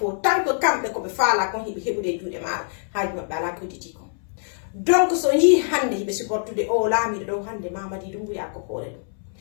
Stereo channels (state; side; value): silent; right; 62 dB below the other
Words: tant que kamɓe koɓe faala kon hiɓe heɓude e juuɗe maɗa haaji maɓɓe ala ko hedditi kon donc so yii hande hiɓe supportude o laamiɗo ɗo hande Mamadi Doumbouya ko hoore